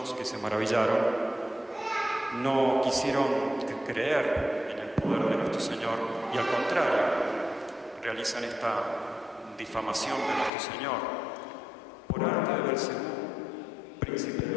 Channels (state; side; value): drops out; right; at 10.5 s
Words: que se maravillaron no quisieron creer en el poder de nuestro Señor y al contrario realizan esta difamación de nuestro Señor. Por arte de Belcebú, príncipe de